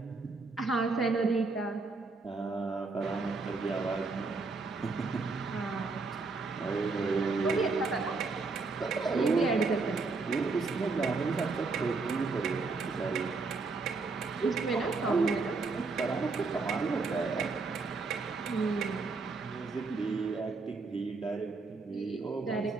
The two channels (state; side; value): quieter; left; 4.0 dB